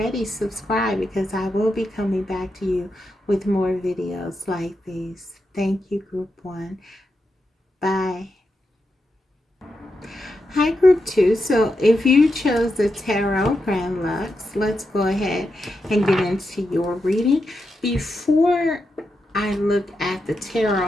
subscribe, because I will be coming back to you with more videos like these. Thank you, group 1. Bye. Hi, group 2. So if you chose the Tarot Grand Lux, let's go ahead and get into your reading. Before I look at the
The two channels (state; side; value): normal; both; correlation 0.86